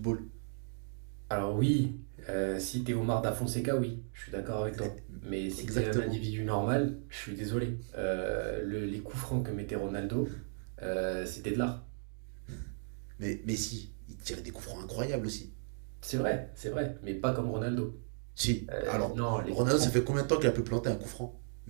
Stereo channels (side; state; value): left; silent; digital silence